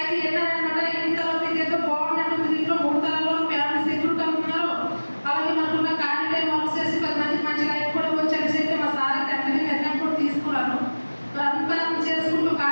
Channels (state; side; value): inverted; both; correlation -1.00